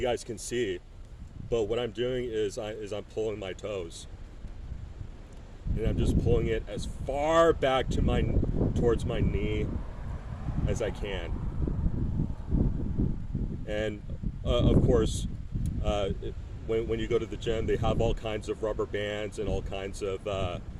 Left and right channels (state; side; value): identical; both; correlation 1.00